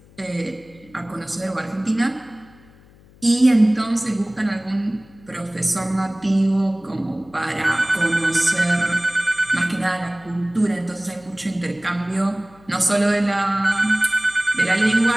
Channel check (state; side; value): noise; left; hum, 26 dB below the sound